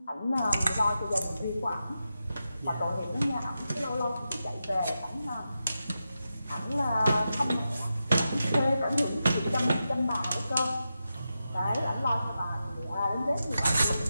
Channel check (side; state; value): both; inverted; correlation -0.89